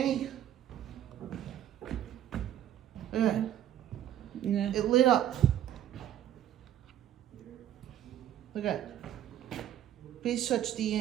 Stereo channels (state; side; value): quieter; left; 11.3 dB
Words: Look at it. Yeah. It lit up. Look at it. Please touch